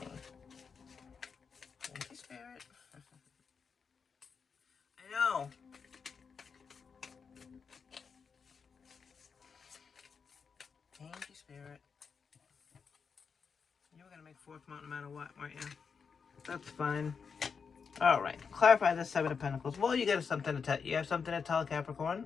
Thank you, Spirit. I know. Thank you, Spirit. You were going to make fourth mount no matter what, weren't you? That's fine. All right. Clarify the Seven of Pentacles. Well, you got something to tell. You have something to tell,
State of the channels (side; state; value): right; quieter; 5.8 dB